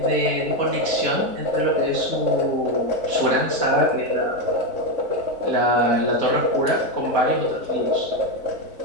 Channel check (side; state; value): left; late; 4.1 ms